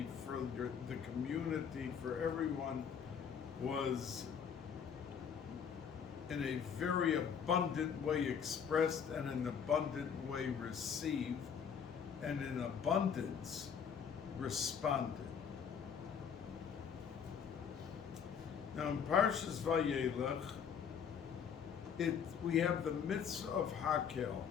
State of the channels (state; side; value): quieter; right; 7.3 dB